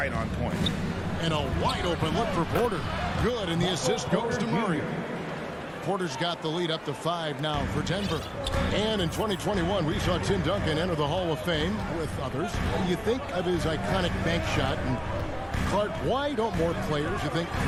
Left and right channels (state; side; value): identical; both; correlation 1.00